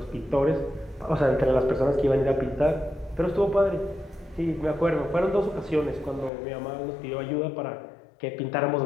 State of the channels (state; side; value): drops out; right; at 6.3 s